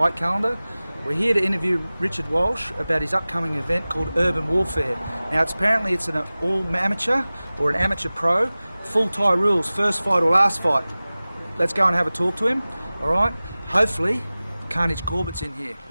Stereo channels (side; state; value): both; inverted; correlation -0.98